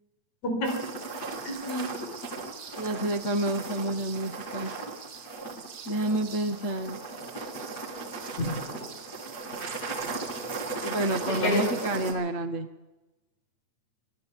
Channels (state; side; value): late; right; 8.4 ms